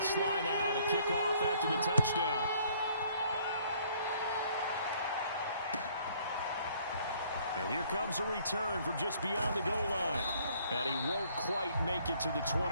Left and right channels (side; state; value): both; inverted; correlation -0.61